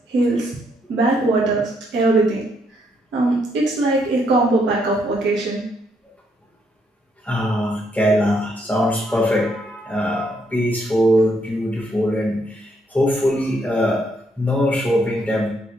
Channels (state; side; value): normal; both; correlation 0.74